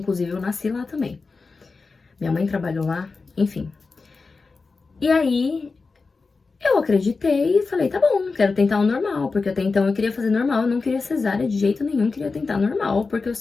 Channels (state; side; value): quieter; right; 4.2 dB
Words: eu nasci lá também. Minha mãe trabalhou lá, enfim. E aí, eu acreditei e falei, tá bom, quero tentar o normal. Porque até então eu queria fazer normal, eu não queria cesárea de jeito nenhum, queria tentar normal, porque eu